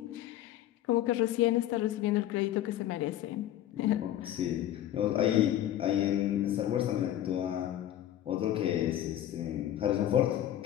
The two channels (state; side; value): quieter; right; 12.4 dB